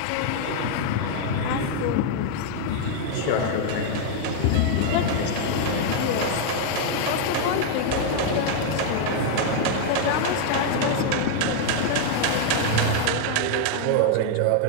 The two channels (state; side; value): different; both; correlation 0.00